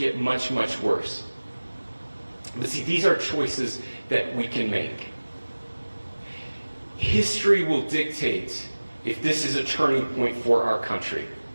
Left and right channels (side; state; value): both; inverted; correlation -1.00